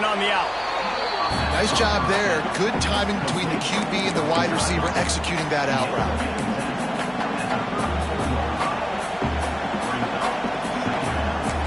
on the out. Nice job there. Good timing between the QB and the wide receiver executing that out route.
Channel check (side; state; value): left; noise; hum, 25 dB below the sound